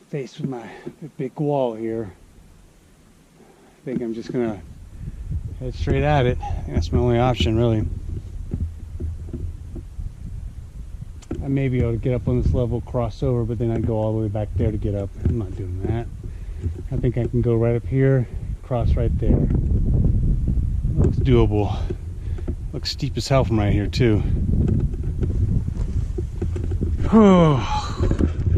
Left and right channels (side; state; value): both; identical; correlation 1.00